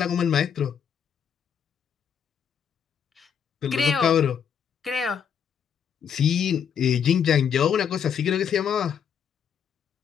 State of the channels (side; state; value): right; quieter; 7.7 dB